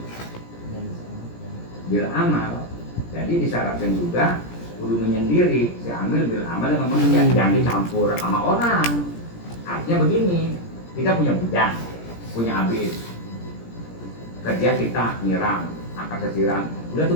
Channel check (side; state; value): right; late; 17 ms